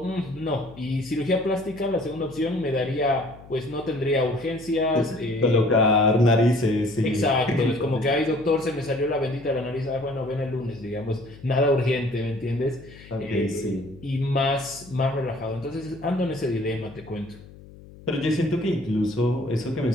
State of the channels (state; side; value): noise; left; hum, 20 dB below the sound